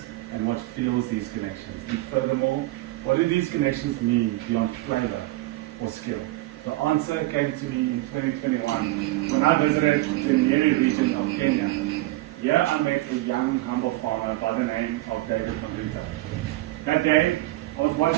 and what fuels these connections, and furthermore, what do these connections mean beyond flavor or skill? The answer came to me in 2021 when I visited the Nyeri region of Kenya. Here I met a young, humble farmer by the name of David Mavita. That day, I was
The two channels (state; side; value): quieter; left; 18.4 dB